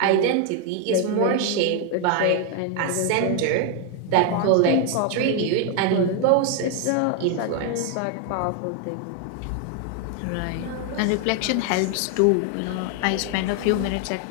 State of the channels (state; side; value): different; both; correlation 0.00